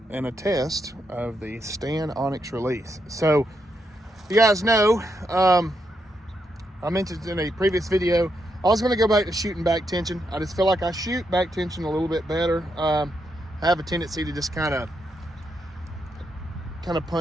and a test of the STAN Onex release. So, you guys know, I mentioned in a previous video, I was going to go back to shooting back tension. I just feel like I shoot back tension a little bit better. I have a tendency to just kind of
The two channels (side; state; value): both; normal; correlation 0.81